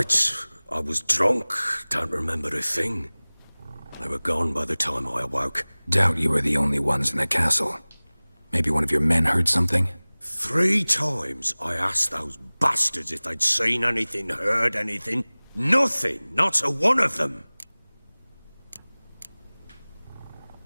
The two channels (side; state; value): both; inverted; correlation -1.00